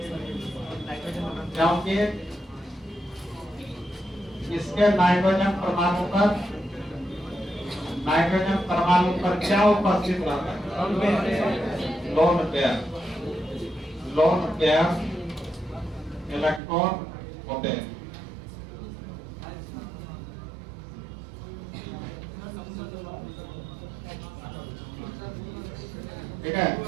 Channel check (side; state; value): left; drops out; at 16.6 s